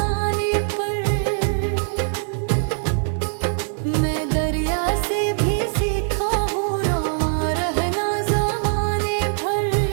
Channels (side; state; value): left; silent; digital silence